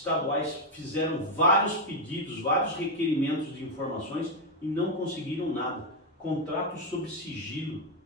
fizeram vários pedidos, vários requerimentos de informações e não conseguiram nada. Contrato sob sigilo,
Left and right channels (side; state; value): both; normal; correlation 0.04